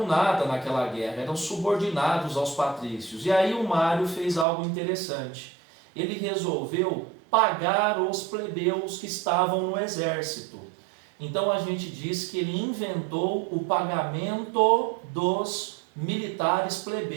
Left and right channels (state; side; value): drops out; left; at 4.5 s